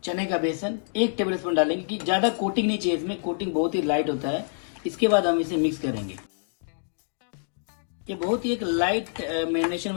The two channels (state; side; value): silent; right; digital silence